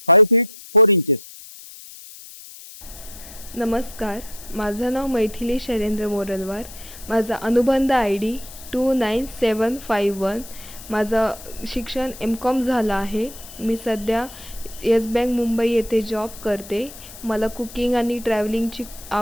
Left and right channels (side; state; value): left; noise; hiss, 16 dB below the sound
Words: 5 feet 4 inches. नमस्कार, माझं नाव मैथिली शैलेंद्र मोरलवार. माझा अनुबंध ID 29751. माझं शिक्षण M.Com झालं आहे. मी सध्या येस बँक मुंबई येथे जॉब करते. मला कुकिंग आणि ट्रॅव्हलिंगची